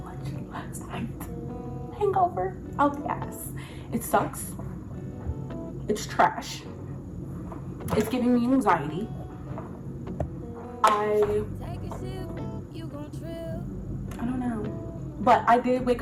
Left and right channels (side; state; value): both; identical; correlation 1.00